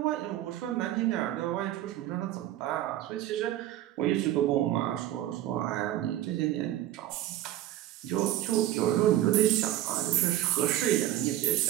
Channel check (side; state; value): left; quieter; 13.6 dB